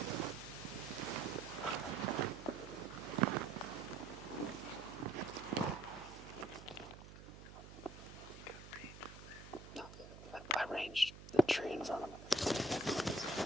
No, I ranged the tree in front of him.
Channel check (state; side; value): noise; right; hum, 15 dB below the sound